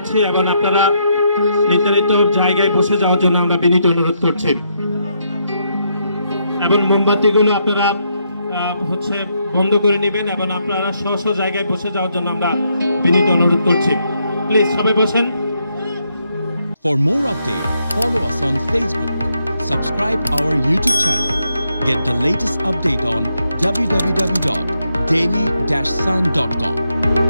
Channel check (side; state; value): both; inverted; correlation -0.78